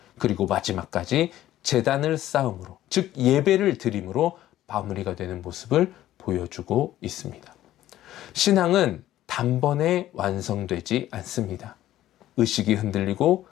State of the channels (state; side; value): quieter; right; 13.6 dB